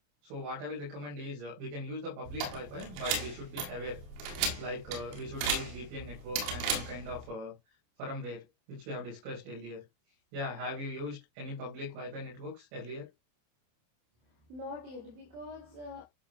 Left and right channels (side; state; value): left; late; 27 ms